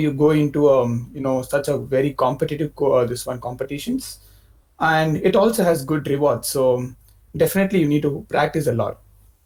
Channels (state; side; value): identical; both; correlation 1.00